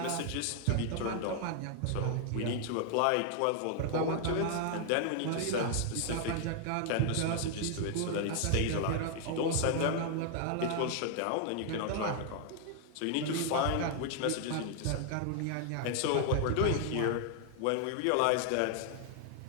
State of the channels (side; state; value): both; different; correlation 0.00